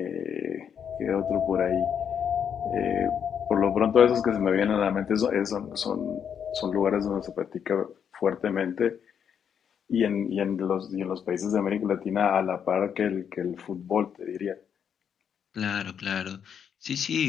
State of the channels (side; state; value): right; quieter; 7.9 dB